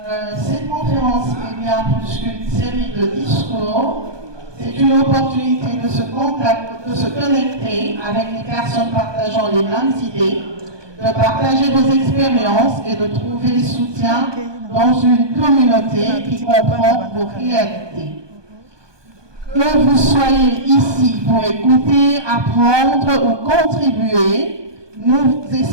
cette conférence est bien plus qu'une série de discours. C'est une opportunité de se connecter avec les personnes partageant les mêmes idées, de partager vos expériences et de trouver soutien dans une communauté qui comprend vos réalités. Que vous soyez ici pour écouter, apprendre ou contribuer, nous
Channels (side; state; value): left; late; 1.2 ms